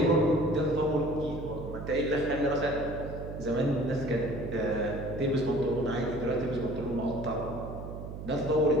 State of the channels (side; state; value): right; noise; hum, 9 dB below the sound